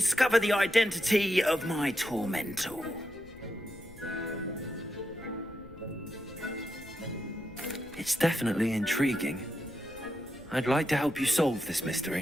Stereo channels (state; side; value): noise; left; rumble, 21 dB below the sound